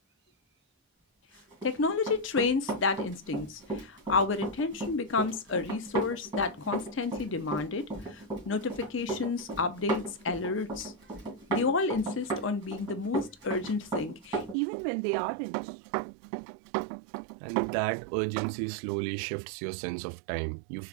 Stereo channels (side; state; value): left; drops out; at 14.6 s